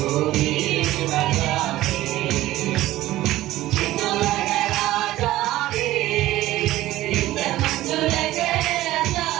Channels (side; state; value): left; quieter; 15.8 dB